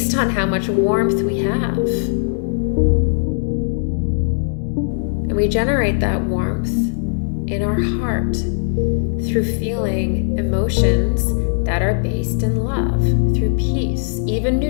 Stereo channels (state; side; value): silent; right; digital silence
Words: on how much warmth we have. And we generate that warmth in our heart through feeling emotions that are based in love, through peace, even